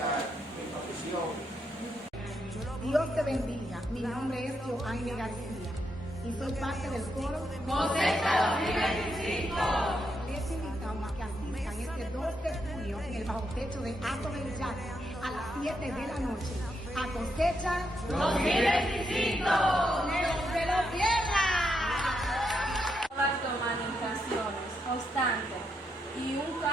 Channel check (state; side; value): normal; both; correlation 0.80